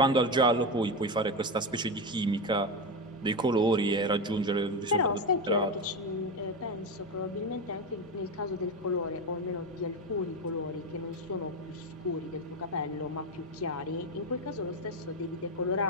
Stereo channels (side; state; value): both; normal; correlation 0.15